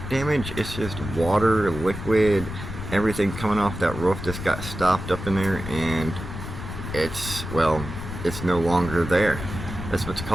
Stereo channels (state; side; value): noise; left; rumble, 8 dB below the sound